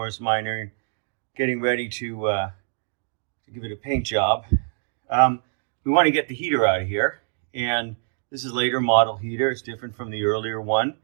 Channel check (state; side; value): silent; left; 62 dB below the other